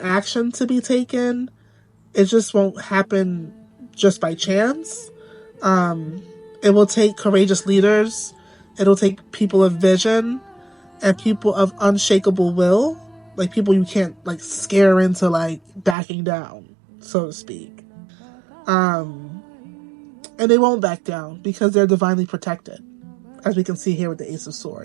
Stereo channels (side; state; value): left; drops out; at 16.0 s